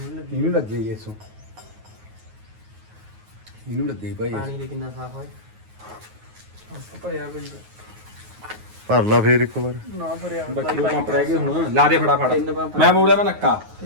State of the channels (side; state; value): left; late; 9.4 ms